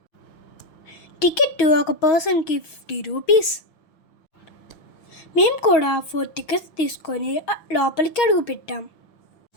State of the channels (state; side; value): late; right; 6.3 ms